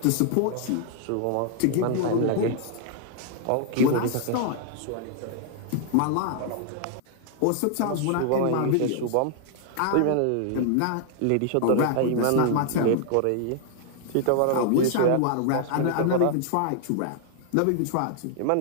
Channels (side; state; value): both; different; correlation 0.00